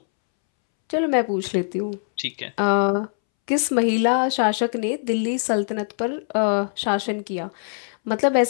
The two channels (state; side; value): silent; right; 64 dB below the other